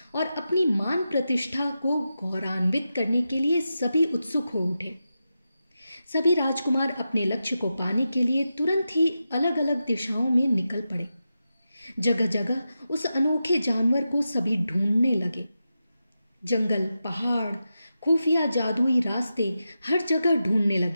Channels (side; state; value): both; inverted; correlation -0.90